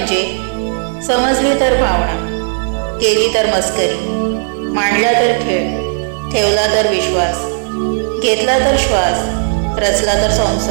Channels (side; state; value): left; silent; digital silence